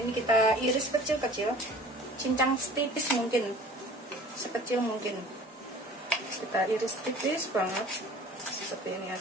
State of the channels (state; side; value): normal; both; correlation 0.45